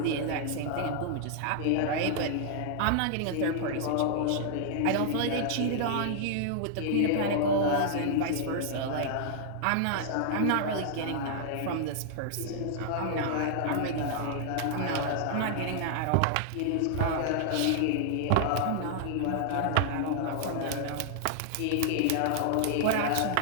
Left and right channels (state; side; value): different; both; correlation -0.01